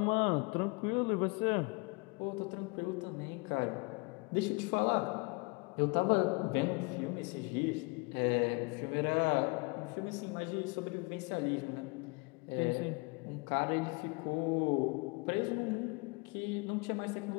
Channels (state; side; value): quieter; right; 29.6 dB